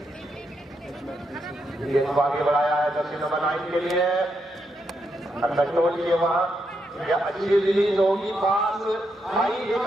आगे बढ़ाया है जर्सी नंबर 9 के लिए, कंट्रोल किए वहां, या अच्छी रिलीज होगी, पास आई, एक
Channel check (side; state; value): both; normal; correlation 0.81